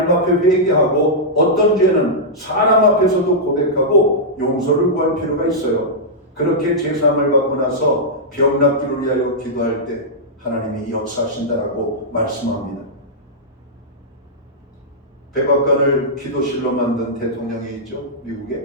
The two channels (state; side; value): normal; both; correlation -0.10